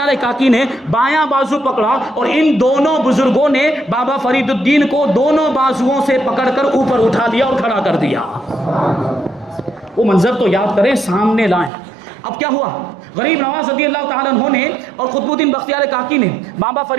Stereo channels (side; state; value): left; drops out; at 11.7 s